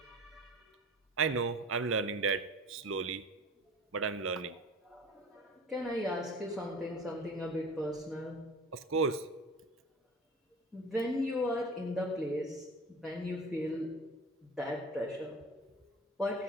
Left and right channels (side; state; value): both; normal; correlation 0.37